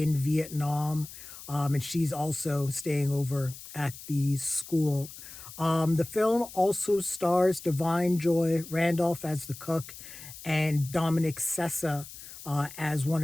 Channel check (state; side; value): noise; left; hiss, 15 dB below the sound